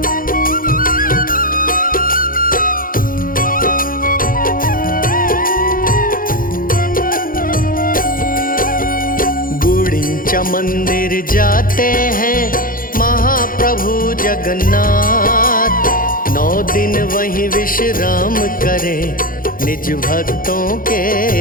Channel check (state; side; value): late; right; 0.41 ms